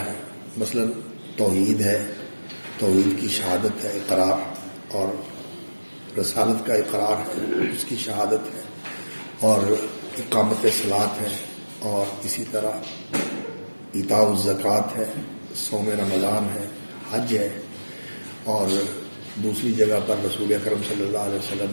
مثلا توحید ہے، توحید کی شہادت ہے، اقرار اور رسالت کا اقرار ہے، اس کی شہادت ہے، اور اقامت صلاۃ ہے، اور اسی طرح ایتاء الزکوٰۃ ہے، صوم رمضان ہے، حج ہے، اور دوسری جگہ پر رسول اکرم صلی اللہ علیہ وسلم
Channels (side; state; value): both; inverted; correlation -1.00